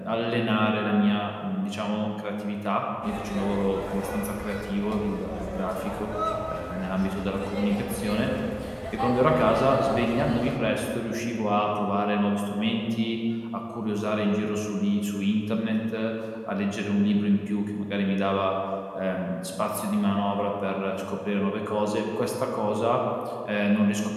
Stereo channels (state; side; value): identical; both; correlation 1.00